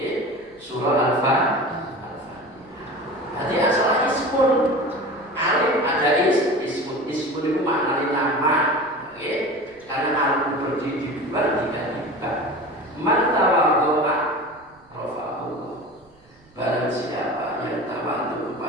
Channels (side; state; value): right; noise; rumble, 30 dB below the sound